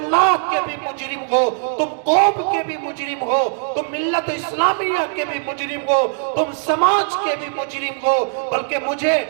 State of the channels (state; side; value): silent; left; digital silence